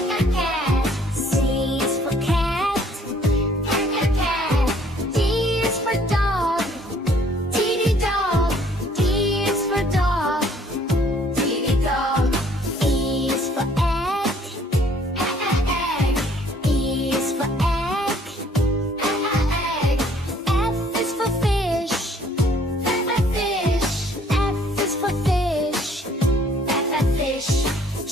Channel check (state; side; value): normal; both; correlation 0.60